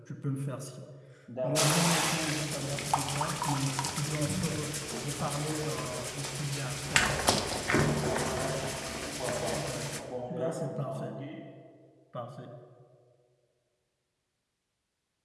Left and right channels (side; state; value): both; identical; correlation 1.00